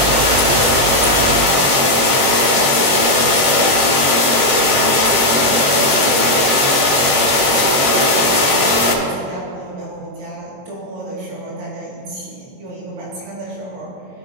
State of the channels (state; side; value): late; left; 22 ms